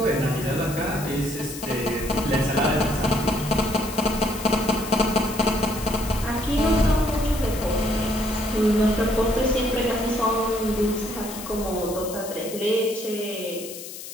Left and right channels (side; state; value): left; noise; hiss, 12 dB below the sound